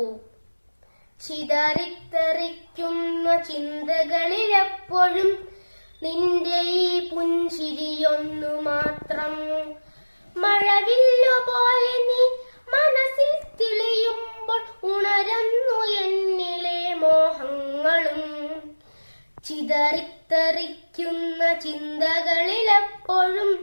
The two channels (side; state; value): both; inverted; correlation -1.00